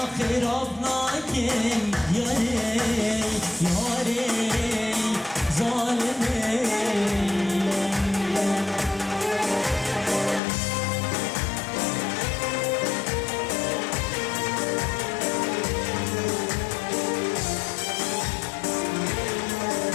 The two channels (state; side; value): drops out; right; at 10.4 s